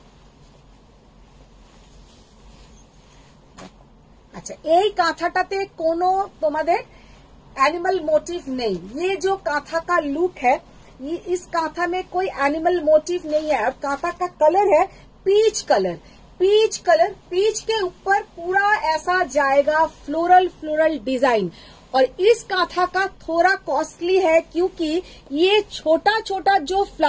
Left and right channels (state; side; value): identical; both; correlation 1.00